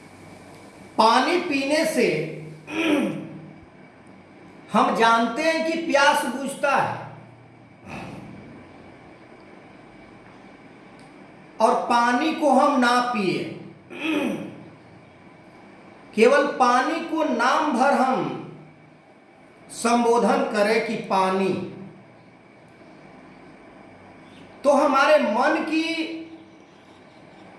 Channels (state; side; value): identical; both; correlation 1.00